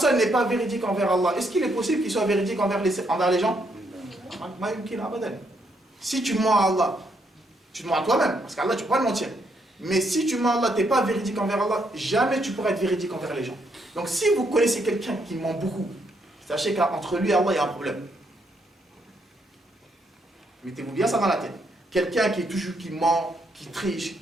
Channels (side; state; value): both; normal; correlation 0.75